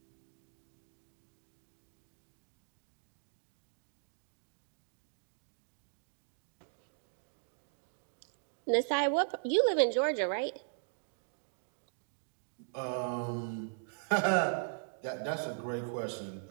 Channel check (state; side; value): silent; left; digital silence